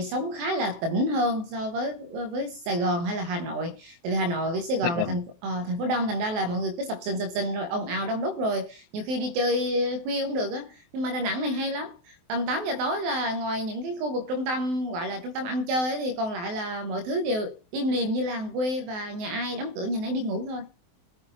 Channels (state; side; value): late; left; 23 ms